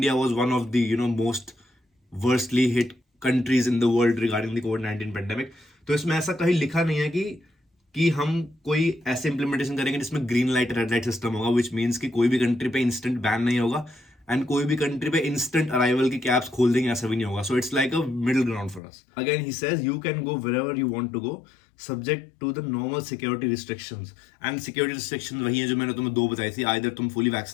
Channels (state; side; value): drops out; right; at 18.8 s